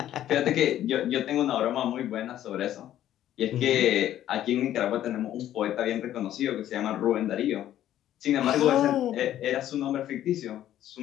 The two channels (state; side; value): quieter; right; 12.1 dB